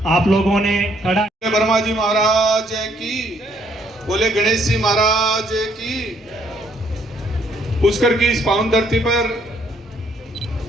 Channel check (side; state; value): both; normal; correlation 0.68